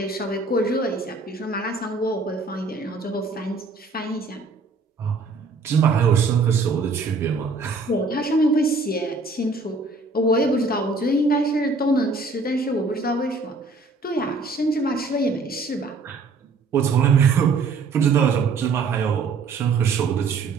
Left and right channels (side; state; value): left; quieter; 3.9 dB